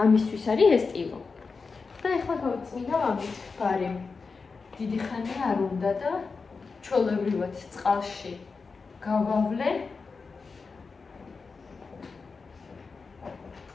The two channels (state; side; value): quieter; right; 4.6 dB